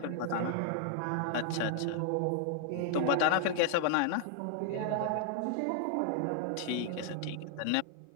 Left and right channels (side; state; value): both; different; correlation 0.00